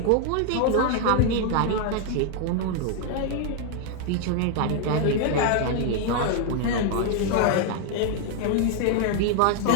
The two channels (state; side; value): different; both; correlation 0.00